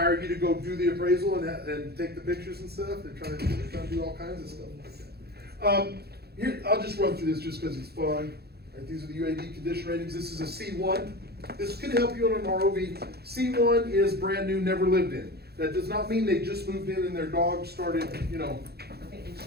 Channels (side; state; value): left; late; 0.46 ms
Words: you to go do the appraisal and take the pictures and stuff? They're trying to do all kinds of stuff like that. Here, I'll just run through this just cause it's fun. Right, these are the UAD condition ratings. This is a C1. This could help you on an ROV. C1 is brand new, never lived in. That does not mean they just moved in and their dog started, Okay, and